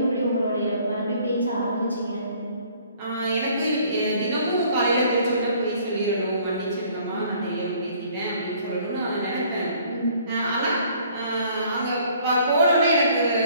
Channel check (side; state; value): both; inverted; correlation -0.58